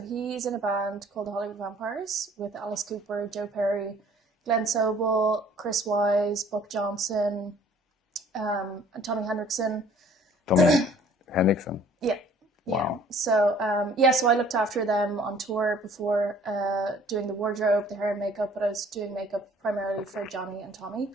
in a band called the Hollywood Vampires with Alice Cooper, Joe Perry, Glenn Sobel, Chris Wise, Buck Johnson, and Tommy Hendrickson. Tommy Hendrickson? Yeah. Wow. So, so I looked after them on tour before doing the wardrobe, the hair and makeup, but I was doing makeup primarily for Johnny and Tommy.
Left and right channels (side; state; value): both; normal; correlation 0.55